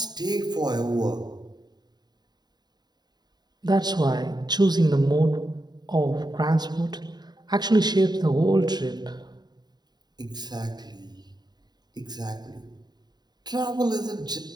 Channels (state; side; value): late; left; 0.20 ms